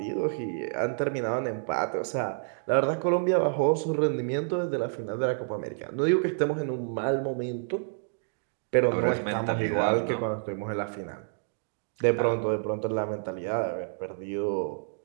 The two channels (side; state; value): left; silent; digital silence